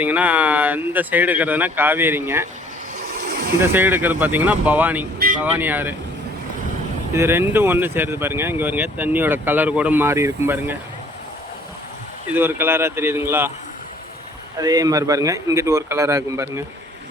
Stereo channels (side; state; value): both; normal; correlation 0.57